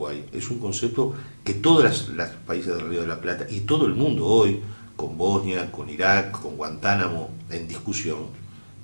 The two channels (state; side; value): inverted; both; correlation -1.00